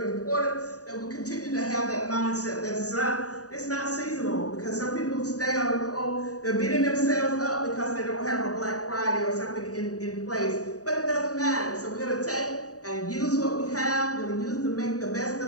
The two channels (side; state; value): right; late; 0.66 ms